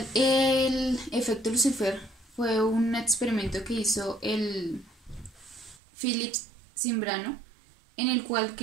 el efecto Lucifer fue un experimento que hizo el Philips Zimbrano, en el cual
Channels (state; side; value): drops out; left; at 5.8 s